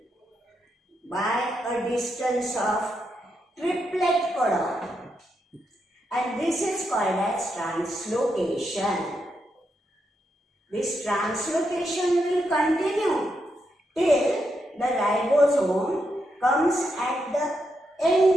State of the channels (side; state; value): both; normal; correlation 0.82